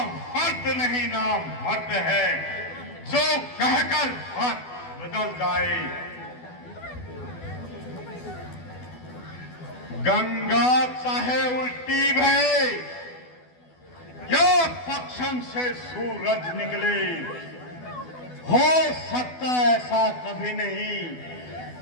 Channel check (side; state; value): right; late; 12 ms